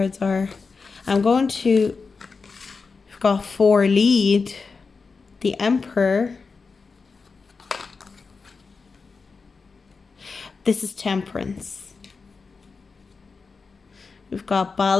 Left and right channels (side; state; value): right; quieter; 4.6 dB